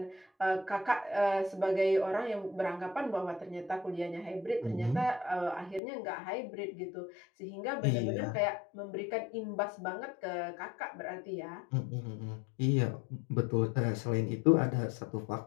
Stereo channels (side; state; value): right; drops out; at 5.8 s